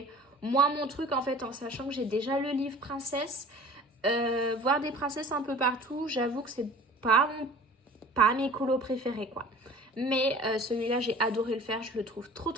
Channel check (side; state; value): both; normal; correlation 0.44